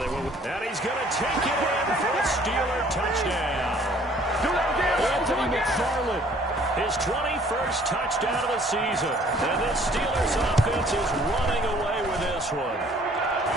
will. And he's going to take it in for a Steeler touchdown. Anthony McFarland, his 21st touchdown of the season. And this Steelers offense is running away with this one.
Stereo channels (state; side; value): normal; both; correlation 0.57